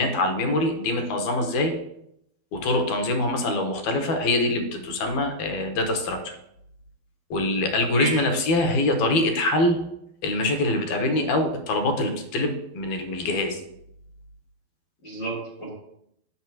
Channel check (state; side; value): late; right; 12 ms